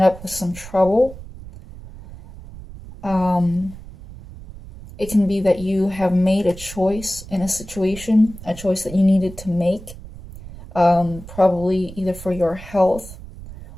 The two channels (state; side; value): noise; right; rumble, 15 dB below the sound